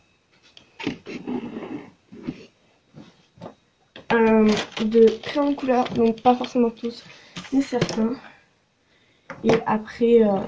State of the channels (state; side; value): identical; both; correlation 1.00